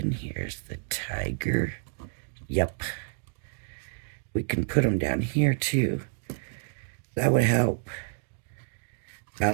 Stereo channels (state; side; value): silent; left; 58 dB below the other